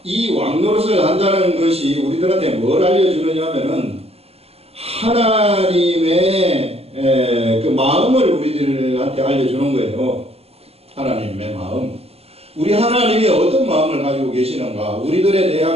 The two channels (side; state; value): left; late; 0.29 ms